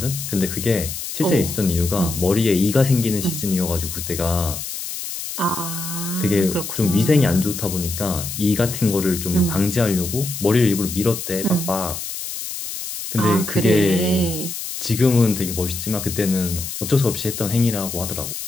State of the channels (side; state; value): left; noise; hiss, 7 dB below the sound